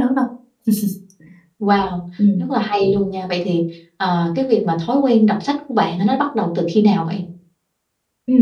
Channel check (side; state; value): both; identical; correlation 1.00